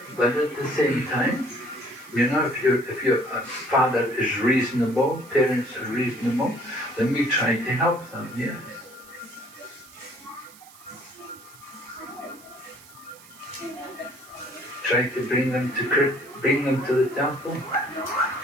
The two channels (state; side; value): noise; right; hiss, 22 dB below the sound